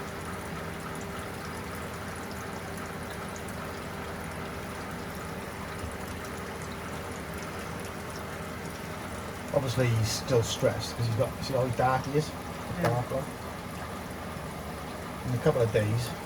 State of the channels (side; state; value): both; identical; correlation 1.00